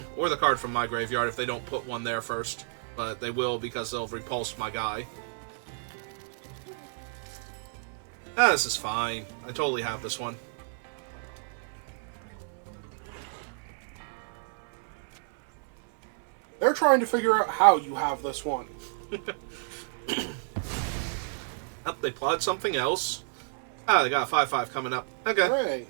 Or the card from my graveyard if they don't put one there first. But they will because they'll repulse my guy. Ah, this is fine. I totally have this one. They're trying to figure out how you have this one. Oh, they plotted something else. Ah, they got a 5/5 coming up. Okay, Hooray.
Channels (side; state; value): left; silent; 58 dB below the other